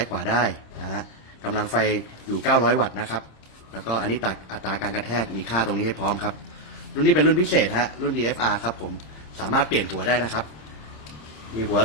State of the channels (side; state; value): right; late; 26 ms